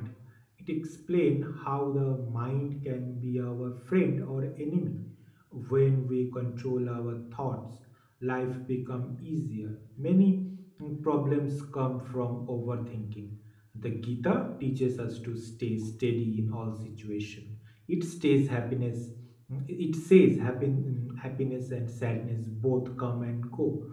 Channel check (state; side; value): identical; both; correlation 1.00